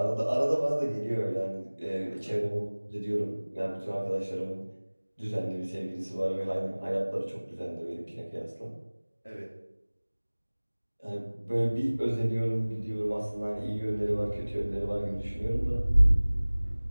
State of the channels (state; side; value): inverted; both; correlation -1.00